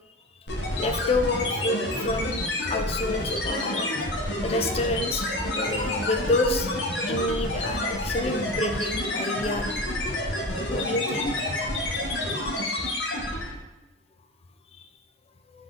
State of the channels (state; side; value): normal; both; correlation 0.28